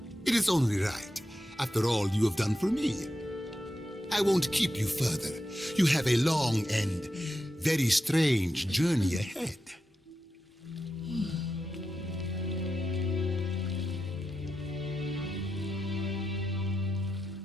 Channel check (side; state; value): both; normal; correlation 0.88